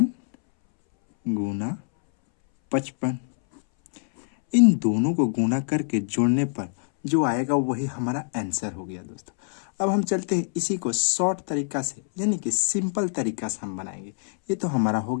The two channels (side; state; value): right; silent; 62 dB below the other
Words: गुना 55। इन दोनों को गुना करके जोड़ने पर जो आएगा वही हमारा आंसर हो गया दोस्तों। अब हम चलते हैं इसी को शॉर्ट तरीका से, यानी कि सिंपल तरीका से हम बनाएंगे। ये तो हमारा हो